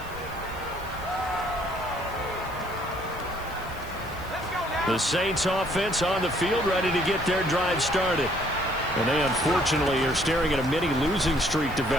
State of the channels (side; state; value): right; noise; hiss, 21 dB below the sound